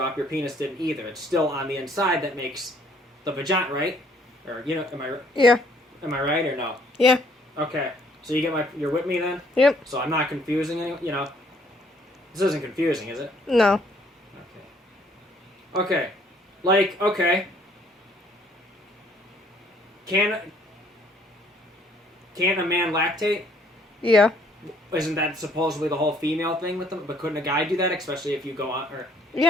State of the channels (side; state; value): both; normal; correlation 0.63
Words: your penis didn't either. It's still on the inside that makes the vagina, right? Or, am I... Yeah. Am I right or no? Yeah. Okay. So you're with me then? Yep. So I'm not confusing anyone, This isn't confusing, is it? No. Okay. Okay. Can a man lactate? Yeah. Isn't that supposedly the whole female thing with them? But couldn't a guy do that, especially if you go on?